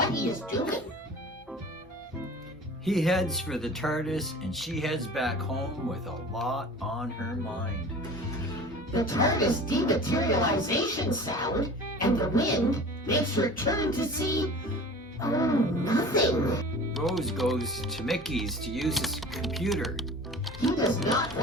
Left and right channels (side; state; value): both; normal; correlation 0.40